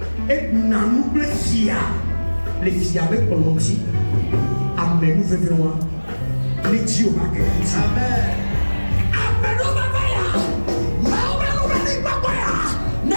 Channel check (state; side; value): inverted; both; correlation -1.00